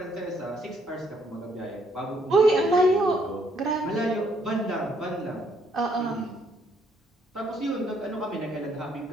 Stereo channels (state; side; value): normal; both; correlation 0.69